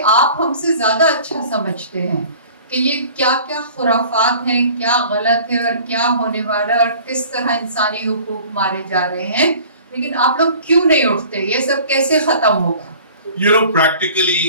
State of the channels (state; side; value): inverted; both; correlation -0.46